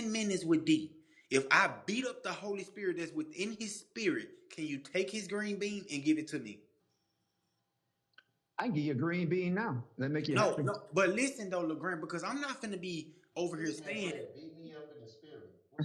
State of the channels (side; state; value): both; identical; correlation 1.00